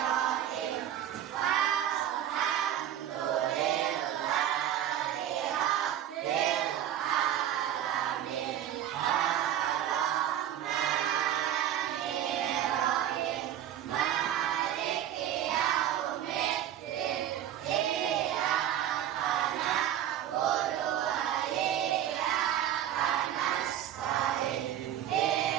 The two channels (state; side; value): quieter; left; 11.1 dB